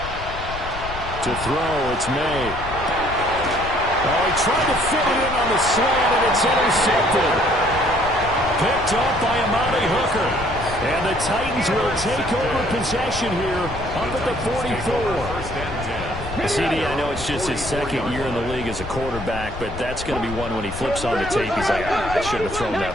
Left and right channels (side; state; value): left; noise; rumble, 10 dB below the sound